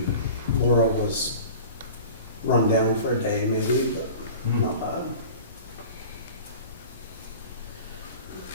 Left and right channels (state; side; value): inverted; both; correlation -0.39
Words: Laura was run down for a day maybe, but Hmm. not bad.